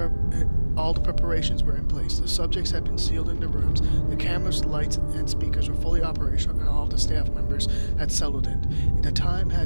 preparations were in place. The subjects had been sealed in the rooms, the cameras, lights, and speakers were fully operational, and all of the staff members had settled in. The time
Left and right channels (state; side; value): inverted; both; correlation -1.00